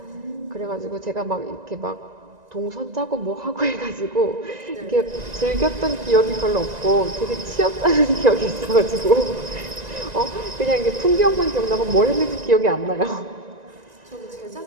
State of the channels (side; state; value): left; late; 1.9 ms